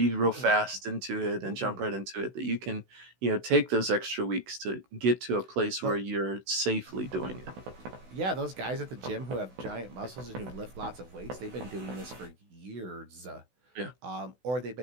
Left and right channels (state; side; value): late; left; 16 ms